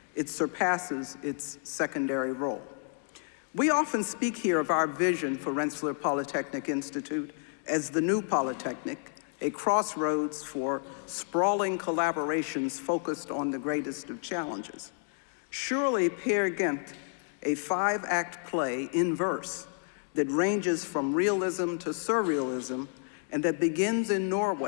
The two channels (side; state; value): right; silent; 55 dB below the other